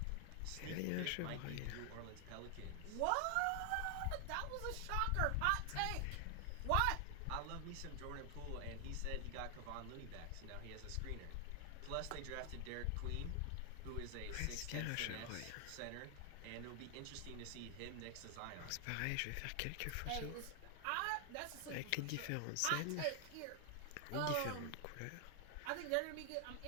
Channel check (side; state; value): both; different; correlation 0.00